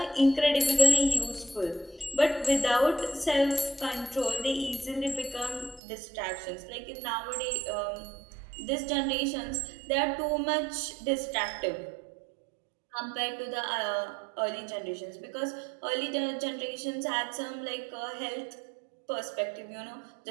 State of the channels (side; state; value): left; drops out; at 5.8 s